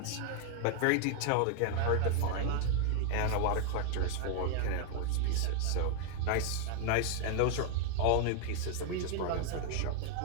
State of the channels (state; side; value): different; both; correlation 0.00